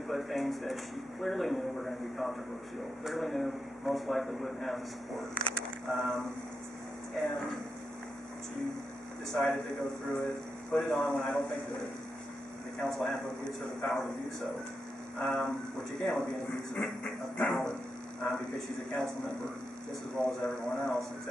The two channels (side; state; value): both; normal; correlation 0.86